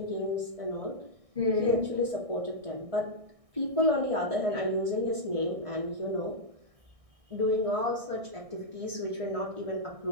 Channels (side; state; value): left; late; 1.6 ms